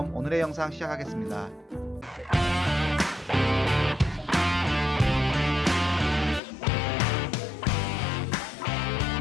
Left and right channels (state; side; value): drops out; right; at 6.4 s